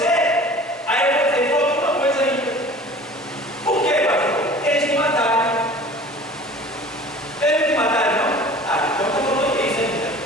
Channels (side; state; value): both; normal; correlation 0.43